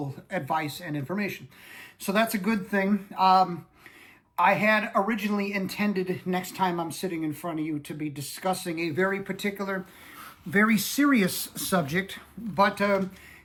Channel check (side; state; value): both; identical; correlation 1.00